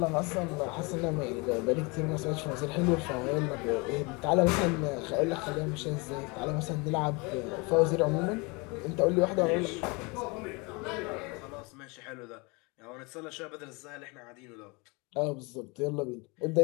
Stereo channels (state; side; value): quieter; right; 28.3 dB